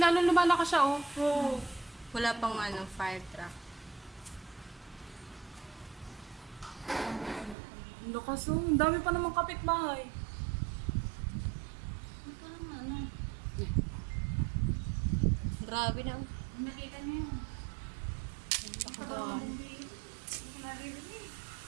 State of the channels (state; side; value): drops out; left; at 7.6 s